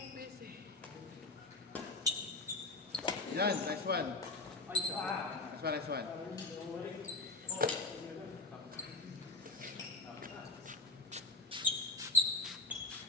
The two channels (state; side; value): quieter; right; 3.4 dB